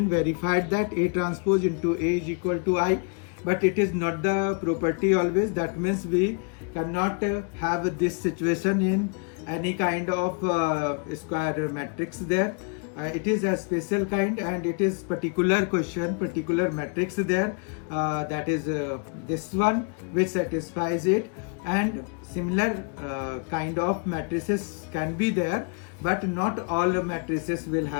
verified that A transpose into A is equal to I. But it is not the property always. That means we cannot have this situation in any kind of square matrix there. It is a special kind, and it is particular question, particular matrix there, that is this one which satisfies it. And similar kind of matrices can be there, but not all matrices will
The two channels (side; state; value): right; quieter; 38.1 dB